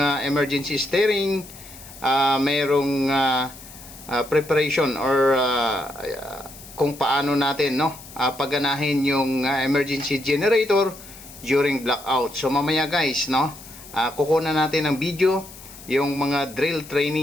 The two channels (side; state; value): left; noise; hiss, 18 dB below the sound